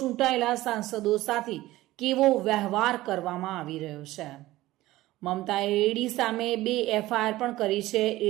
સાંસદો સાથે કેવો વ્યવહાર કરવામાં આવી રહ્યો છે. મમતાએ ઈડી સામે 2 એફઆઈઆર પણ કરી છે.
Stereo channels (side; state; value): left; quieter; 17.0 dB